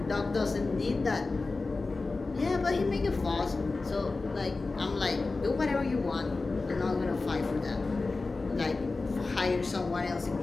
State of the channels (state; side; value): quieter; right; 3.7 dB